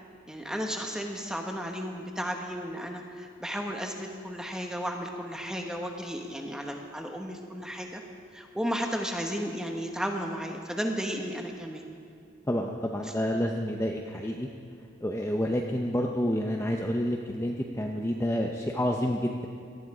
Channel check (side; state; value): both; normal; correlation 0.82